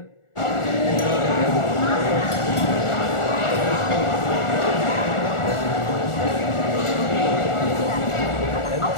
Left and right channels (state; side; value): late; right; 1.4 ms